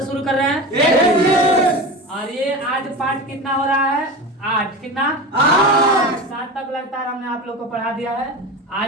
शुरू कर रहे हैं? और ये आज पार्ट कितना हो रहा है? 8। कितना? 7 तक लगातार हमने आप लोग को पढ़ा दिया है।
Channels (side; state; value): both; normal; correlation 0.27